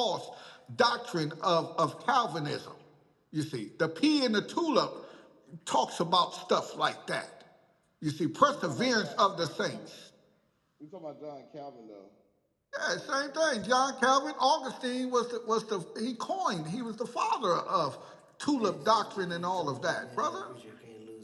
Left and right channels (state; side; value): identical; both; correlation 1.00